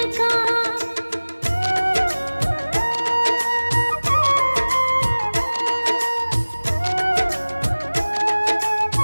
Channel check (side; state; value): both; inverted; correlation -1.00